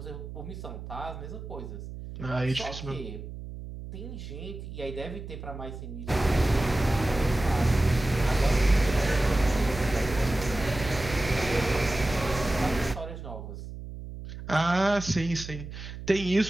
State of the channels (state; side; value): noise; right; hum, 10 dB below the sound